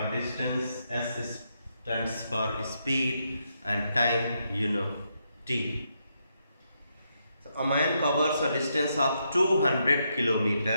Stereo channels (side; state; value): both; inverted; correlation -0.80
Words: distance, S stands for speed and time, you know, T. So a man covers a distance of 200